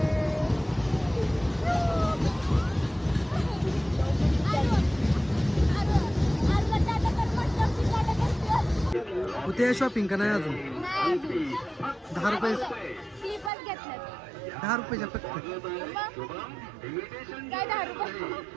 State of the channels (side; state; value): left; drops out; at 13.5 s